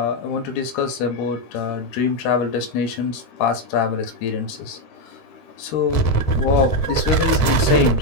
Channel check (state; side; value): late; right; 13 ms